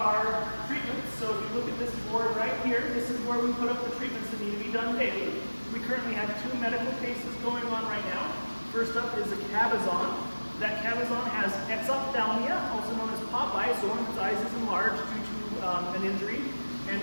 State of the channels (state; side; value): inverted; both; correlation -1.00